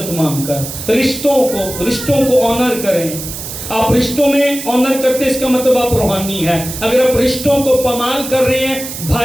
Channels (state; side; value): noise; right; hiss, 9 dB below the sound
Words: مانگ کر رشتوں کو آنر کریں۔ آپ رشتوں میں آنر کرتے اس کا مطلب آپ روحانی ہیں۔ اگر آپ رشتوں کو پامال کر رہے ہیں،